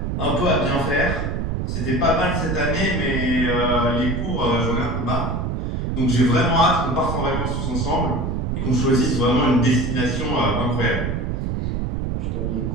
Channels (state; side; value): noise; right; rumble, 1 dB below the sound